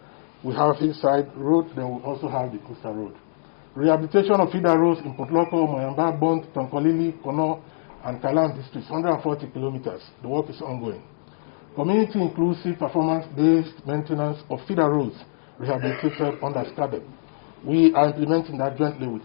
we have hillside road, then we also have the coastal road. Rehabilitation of feeder roads in Potloko, Moyamba, Bond, Tonkolili, Kono, and Kalam districts, 140 kilometers. The work is ongoing. Community inclusive performance-based maintenance of feeder roads rehabilitated under SCADEP. We are implementing that jointly with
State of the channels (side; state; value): right; silent; digital silence